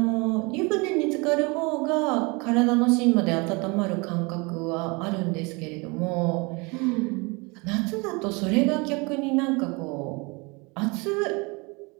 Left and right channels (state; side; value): quieter; left; 28.1 dB